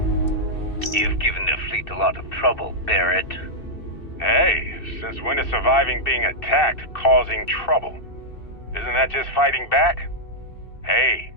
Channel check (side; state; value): right; late; 2.6 ms